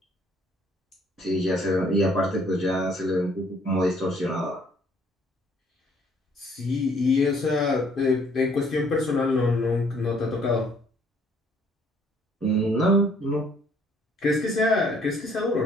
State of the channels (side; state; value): both; normal; correlation 0.62